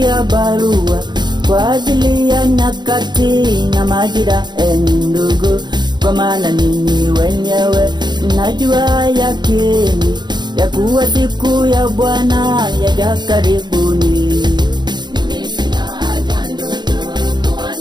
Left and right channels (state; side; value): late; left; 0.21 ms